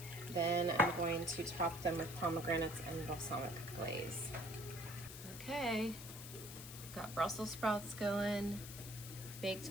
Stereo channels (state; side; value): noise; left; hiss, 12 dB below the sound